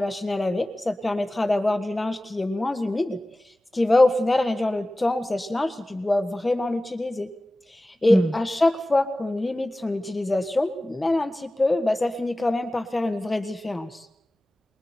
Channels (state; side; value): normal; both; correlation 0.97